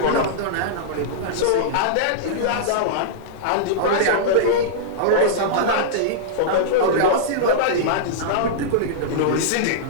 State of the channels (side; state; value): both; different; correlation -0.03